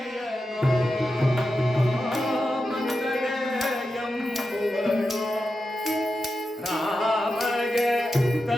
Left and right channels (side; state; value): both; normal; correlation 0.90